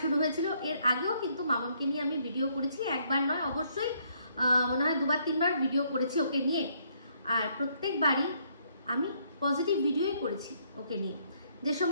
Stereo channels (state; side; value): inverted; both; correlation -0.69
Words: শুরু হয়েছিল। এর আগেও কিন্তু মামনকে নিয়ে আমি ভিডিও করেছি, একবার নয় অবশ্যই মনে হয় দুবার তিনবার ভিডিও করেছি ওকে নিয়ে। আর প্রত্যেকবারই আমি পজিটিভ ভিডিওই করেছি ওকে নিয়ে। যে